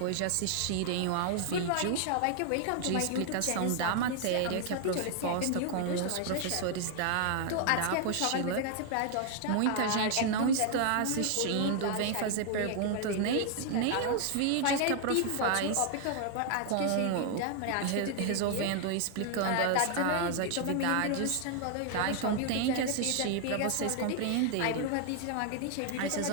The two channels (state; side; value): different; both; correlation 0.00